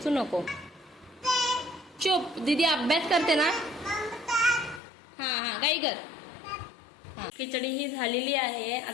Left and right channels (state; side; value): drops out; right; at 4.8 s